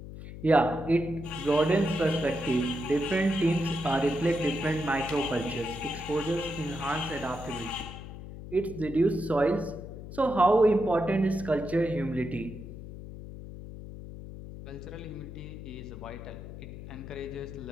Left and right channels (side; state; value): left; noise; hum, 12 dB below the sound